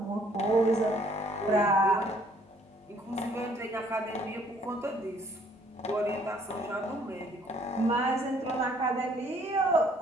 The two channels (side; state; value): both; normal; correlation 0.61